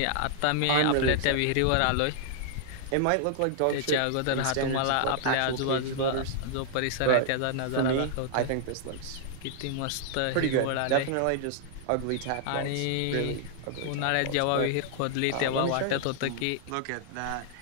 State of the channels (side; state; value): both; different; correlation -0.01